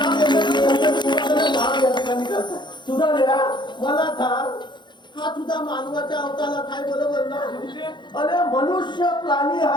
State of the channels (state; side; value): late; right; 0.22 ms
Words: काम या ठिकाणी करतात सुद्धा मला सांग हा तुझा मानवाच्या अवताला काय बरोबर ना अरे मनुष्य प्राणी